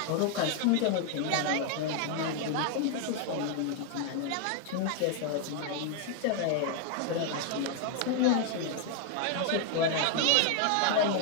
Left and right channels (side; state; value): both; different; correlation 0.00